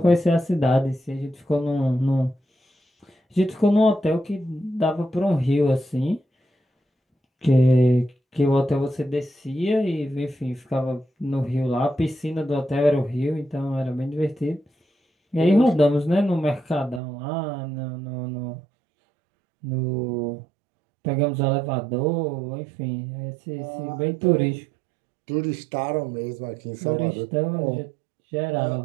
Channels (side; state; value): left; drops out; at 17.0 s